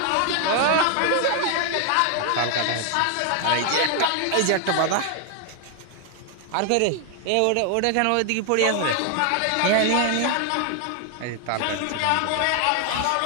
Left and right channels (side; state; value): both; different; correlation 0.00